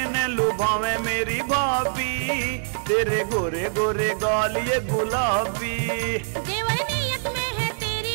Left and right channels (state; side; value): silent; left; 62 dB below the other